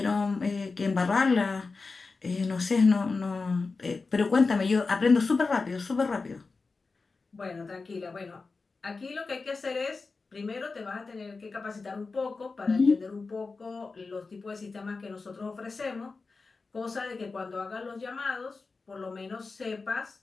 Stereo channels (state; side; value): quieter; right; 4.1 dB